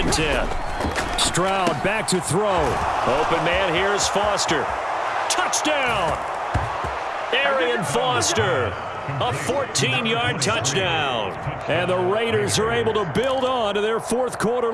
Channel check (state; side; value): identical; both; correlation 1.00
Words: 10. Stroud back to throw. Open man, here's Foster. Touchdown! Arian Foster. A 14-yard touchdown. And the Raiders are able to build on to their fourth-quarter